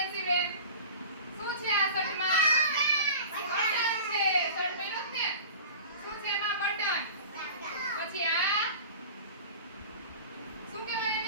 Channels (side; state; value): both; inverted; correlation -0.38